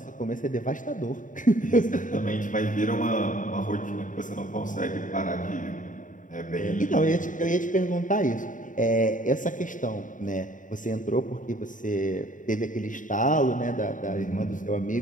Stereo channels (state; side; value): late; right; 0.38 ms